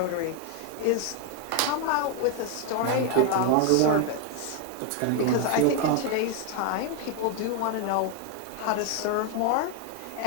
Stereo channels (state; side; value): different; both; correlation 0.01